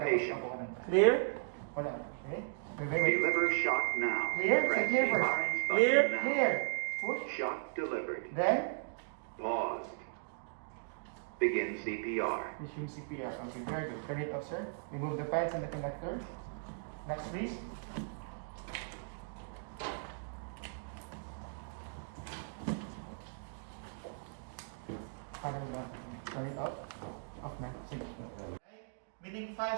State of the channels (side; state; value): left; silent; digital silence